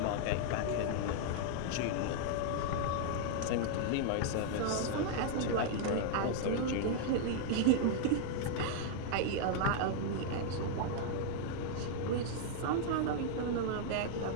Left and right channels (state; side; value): different; both; correlation -0.01